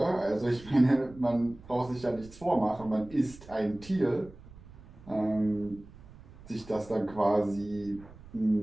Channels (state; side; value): noise; right; rumble, 20 dB below the sound